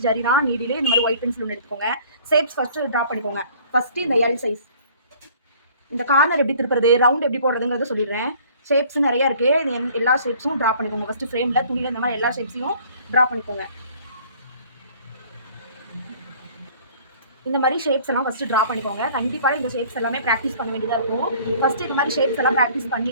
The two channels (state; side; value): inverted; both; correlation -0.53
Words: ஜரி தான் நீடிலே இந்த மாதிரி ஒயிட் பென்சில் ஒன்று எடுத்துக்கோங்க. ஷேப்ஸ் ஃபர்ஸ்ட் ட்ரா பண்ணிக்கோங்க. ஃபர்ஸ்ட் இந்த எல் சைஸ், இந்த கார்னர் எப்படி திருப்புறது, ரவுண்ட் எப்படி போடுறதுங்கிறத சொல்லிடுறேன். ஷேப்ஸ் நிறைய இருக்கு. எல்லா ஷேப்ஸும் ட்ரா பண்ணிக்கோங்க. ஃபர்ஸ்ட் ஃப்ரேம்ல துணியில இந்த மாதிரி எல்லா ஷேப்ஸையும் ட்ரா பண்ணிக்கோங்க. இந்த மாதிரி ஷேப்ஸ் எல்லாம் ஃபர்ஸ்ட் ட்ரா பண்ணிக்கோங்க. கண்டிப்பாக இந்த ஷேப்ஸ் எல்லாமே ப்ராக்டிஸ் பண்ண வேண்டியதாக இருக்கும். ஃபர்ஸ்ட் இந்த மாதிரி ஷேப்ஸ் எல்லாம் ப்ராக்டிஸ்